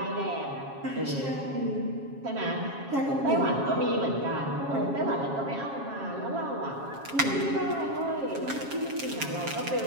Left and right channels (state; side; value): late; left; 7.3 ms